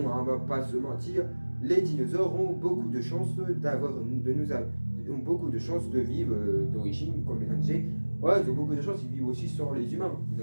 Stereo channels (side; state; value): both; inverted; correlation -1.00